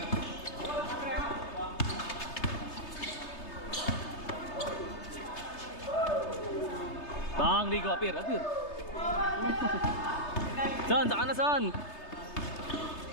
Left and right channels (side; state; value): right; late; 3.3 ms